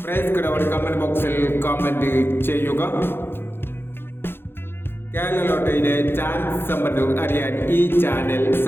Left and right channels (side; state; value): right; late; 0.11 ms